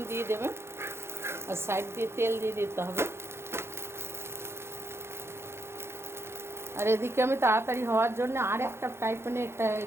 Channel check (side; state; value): left; late; 0.12 ms